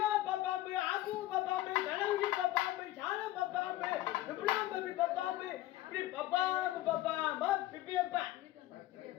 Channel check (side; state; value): right; quieter; 15.6 dB